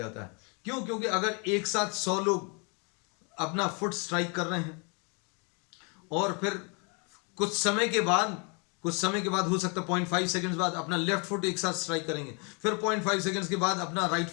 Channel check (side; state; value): right; quieter; 34.3 dB